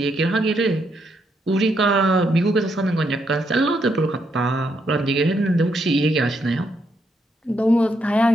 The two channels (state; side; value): normal; both; correlation 0.77